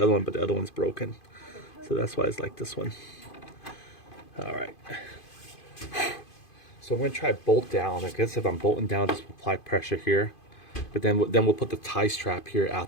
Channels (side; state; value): right; late; 2.5 ms